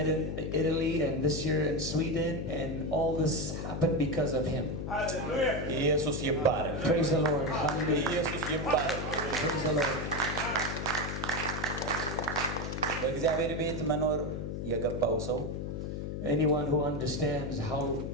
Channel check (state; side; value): noise; left; hum, 4 dB below the sound